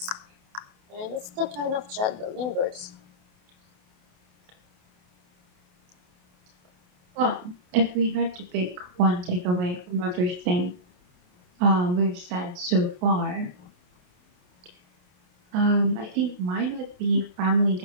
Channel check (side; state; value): left; late; 28 ms